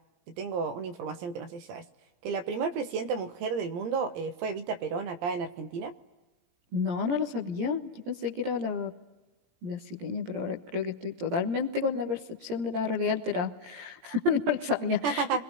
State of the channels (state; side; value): late; left; 17 ms